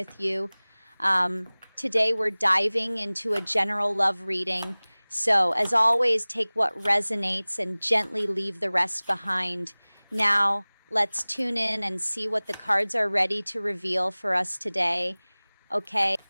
you. Today, we're diving into a general love reading. So, as always, take what resonates and gently leave the rest behind. Now, let's tune in and see what the cards are ready to reveal for us today. Okay.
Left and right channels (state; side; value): inverted; both; correlation -1.00